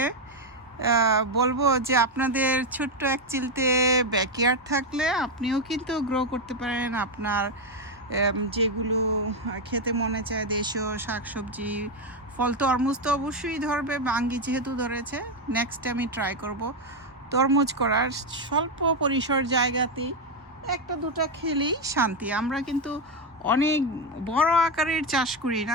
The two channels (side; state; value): both; normal; correlation 0.06